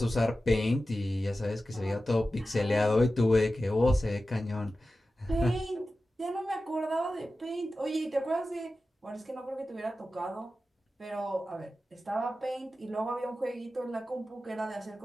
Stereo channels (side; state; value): both; normal; correlation 0.94